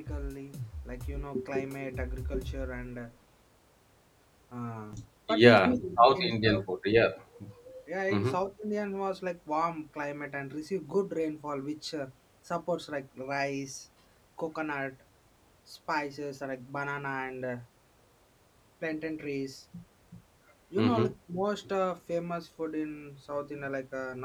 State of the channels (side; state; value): both; identical; correlation 1.00